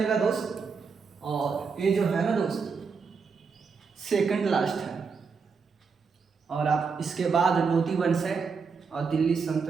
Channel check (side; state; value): left; quieter; 5.3 dB